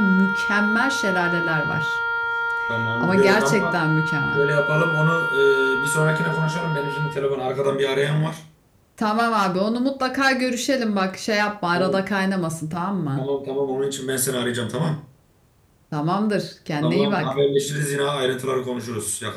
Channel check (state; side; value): identical; both; correlation 1.00